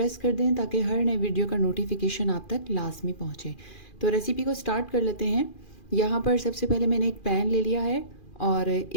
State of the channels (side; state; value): right; late; 2.4 ms